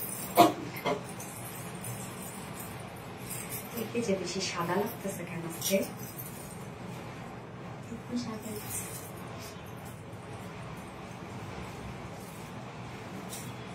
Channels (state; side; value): identical; both; correlation 1.00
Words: যে বেশি সাদা লাগতেছে কেন আজকে?